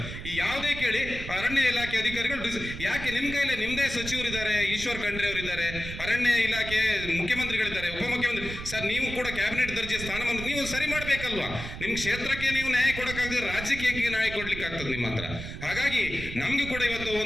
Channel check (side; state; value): right; noise; rumble, 9 dB below the sound